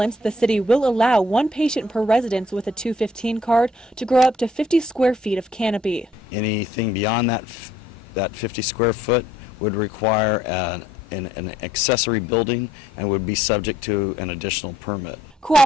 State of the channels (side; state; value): both; normal; correlation 0.65